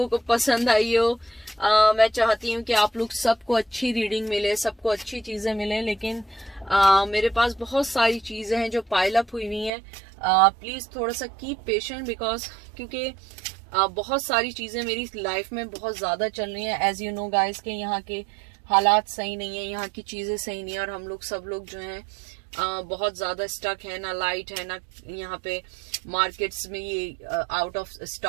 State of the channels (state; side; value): drops out; left; at 9.7 s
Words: को पसंद आई हो। मैं चाहती हूँ कि आप लोग सबको अच्छी रीडिंग मिले, सबको अच्छी चीज़ें मिले, लेकिन मेरे पास बहुत सारी चीज़ें हैं जो पाइल अप हुई हुई हैं। प्लीज़ थोड़ा सा कीप पेशेंट, बिकॉज क्योंकि बहुत सारी चीज़ें मेरी लाइफ में बहुत ज़्यादा चल रही हैं। एज यू नो गाइस के यहाँ के हालात सही नहीं है, यहाँ की चीज़ें सही नहीं है, और हम लोग सब लोग जो हैं बहुत ज़्यादा स्टक है, ना लाइट है, ना यहाँ पे मार्केट्स में ये आउट ऑफ